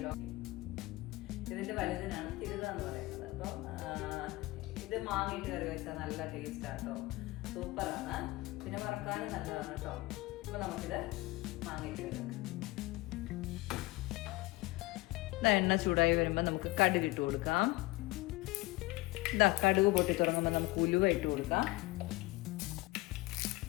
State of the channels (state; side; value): quieter; right; 20.7 dB